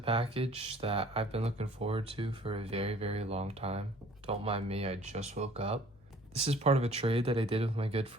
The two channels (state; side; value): noise; left; hum, 27 dB below the sound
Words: that I've been looking forward to for a very, very long time. Don't mind me, I just woke up. This is part of a trade that I did with my good